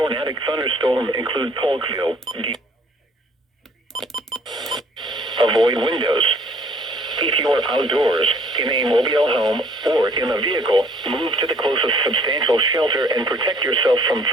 thunderstorm include Polkville. Avoid windows. If you are outdoors, in a mobile home, or in a vehicle, move to the closest substantial shelter and protect yourself from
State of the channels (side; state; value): both; normal; correlation 0.58